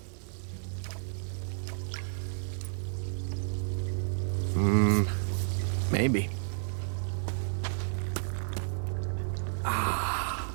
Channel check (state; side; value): silent; left; digital silence